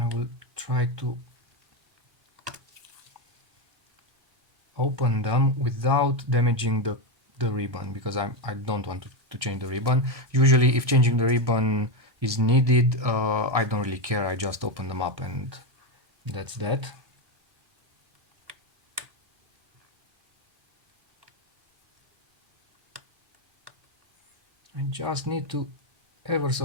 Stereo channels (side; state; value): left; late; 1.6 ms